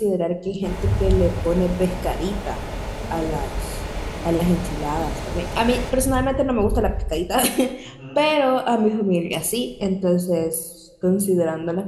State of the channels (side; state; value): both; identical; correlation 1.00